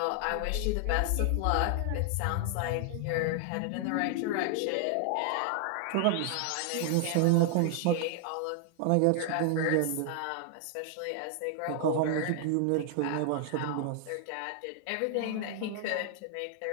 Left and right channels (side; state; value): both; different; correlation 0.00